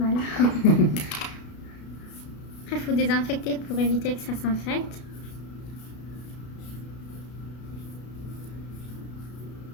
Après, il faut désinfecter pour éviter que ça s'infecte.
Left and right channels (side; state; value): right; late; 33 ms